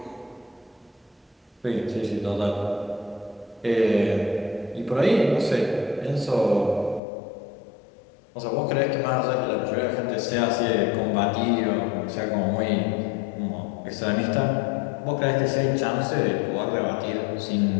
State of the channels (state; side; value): drops out; right; at 7.0 s